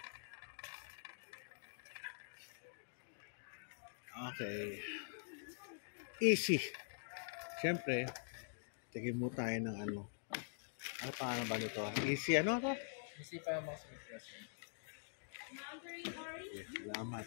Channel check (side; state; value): right; silent; digital silence